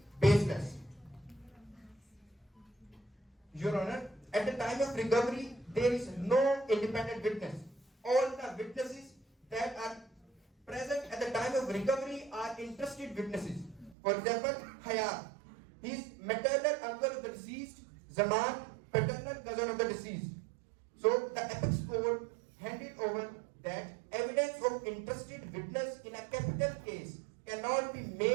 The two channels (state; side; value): drops out; left; at 14.0 s